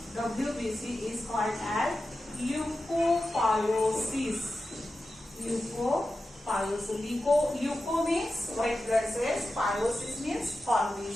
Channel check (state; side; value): normal; both; correlation 0.92